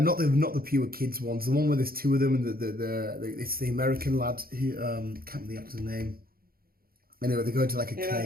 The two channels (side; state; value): left; late; 0.43 ms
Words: not the pure kids ones, the one where there's two of them, and it's the American lad who can't remember the actor's name. Anyway, they go into like a